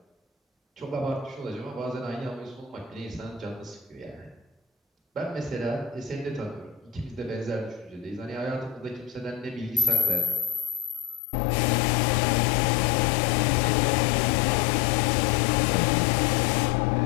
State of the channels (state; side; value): drops out; right; at 11.2 s